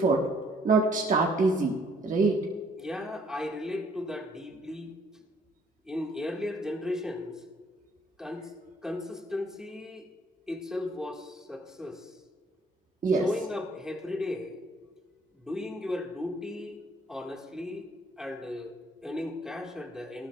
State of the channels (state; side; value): normal; both; correlation 0.63